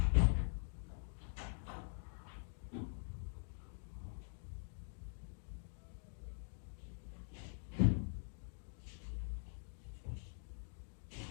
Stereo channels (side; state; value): right; silent; digital silence